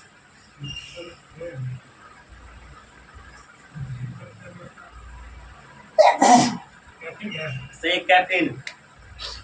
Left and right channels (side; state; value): both; identical; correlation 1.00